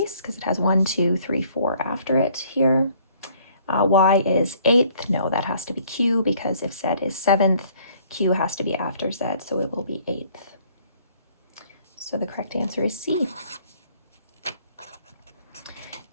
because it has 1, 2, 3, 4 after it here. Y is 8th. No, that has to be Q, because if Z is 7th, Q has to be after Z, so it will be 8th. So the correct answer is C.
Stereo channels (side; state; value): both; inverted; correlation -0.60